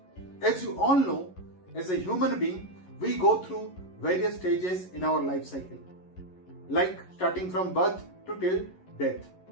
As you all know, as a human being, we go through various stages in our life cycle, like starting from birth to till death.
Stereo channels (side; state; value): right; late; 11 ms